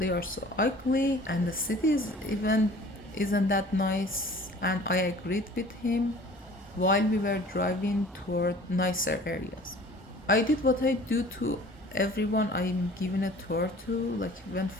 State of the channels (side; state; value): both; normal; correlation 0.47